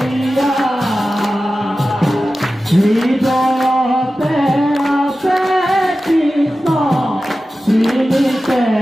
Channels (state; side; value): normal; both; correlation 0.94